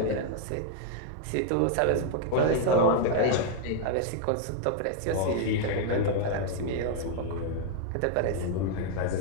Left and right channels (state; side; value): different; both; correlation 0.00